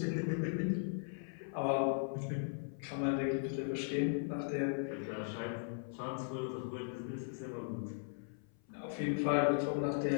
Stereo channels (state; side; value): silent; right; 52 dB below the other